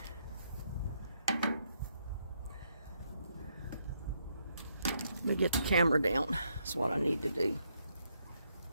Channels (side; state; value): both; inverted; correlation -0.76